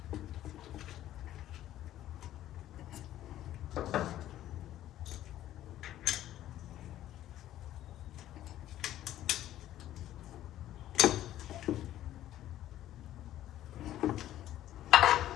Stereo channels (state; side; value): quieter; right; 13.0 dB